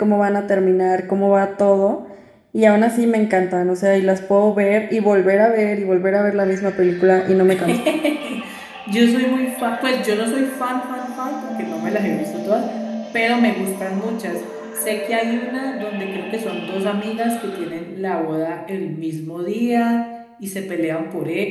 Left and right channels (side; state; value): both; identical; correlation 1.00